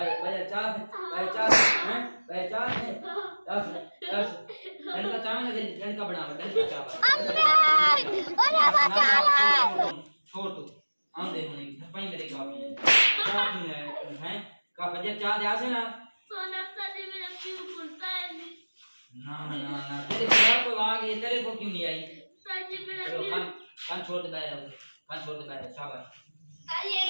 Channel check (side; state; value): both; inverted; correlation -1.00